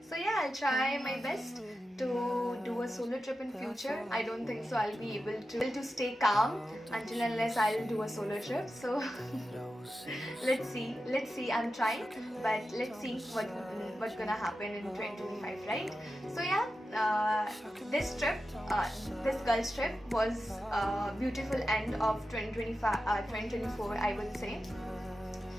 So yeah, I'll try my best to do a solo trip in future. I don't think so I'll be able to stay calm until unless I'll do a solo trip. So let's see. I'm trying, but let's see what's gonna happen in 2025, right? So yeah, this trip, this girls trip was a beautiful end of 2024, I would say,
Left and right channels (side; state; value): both; normal; correlation 0.91